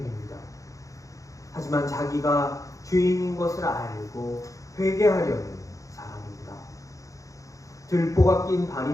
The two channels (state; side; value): late; right; 0.16 ms